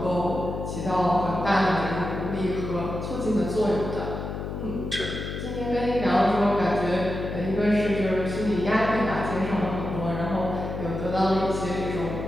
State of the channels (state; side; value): noise; left; hum, 5 dB below the sound